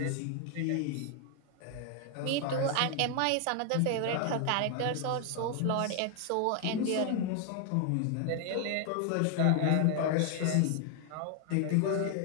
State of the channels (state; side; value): different; both; correlation 0.00